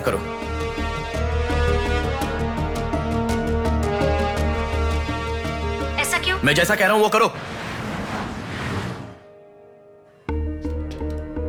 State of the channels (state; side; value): identical; both; correlation 1.00